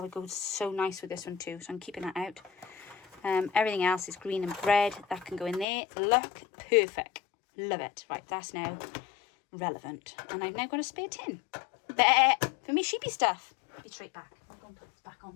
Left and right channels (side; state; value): right; drops out; at 5.7 s